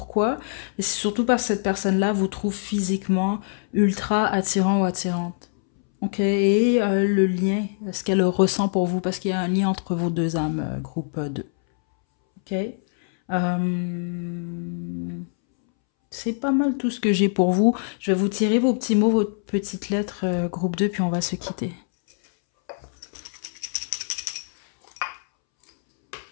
Mais c'est surtout parce que cette personne-là vous trouve physiquement ultra attirant ou attirante. Ok, et le lien, ce qu'elle ressent pour vous, parce qu'il y a un lien entre vos deux âmes, groupe 2. Ok. C'est pas mal tout ce que j'ai pour vous. Je vais vous tirer vos petits mots, vos petites lettres, groupe 2, puis on va se quitter.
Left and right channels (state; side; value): silent; right; 63 dB below the other